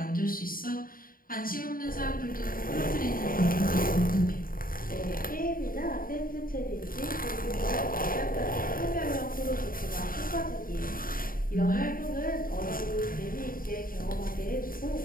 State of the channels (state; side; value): late; right; 0.41 ms